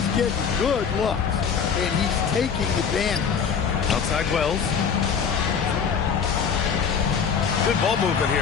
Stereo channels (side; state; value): right; quieter; 6.7 dB